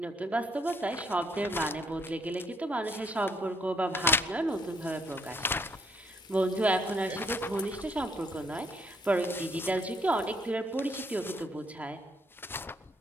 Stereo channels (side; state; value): both; normal; correlation 0.69